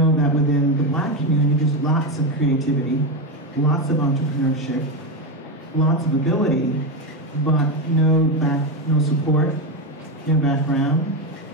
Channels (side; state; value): both; normal; correlation 0.12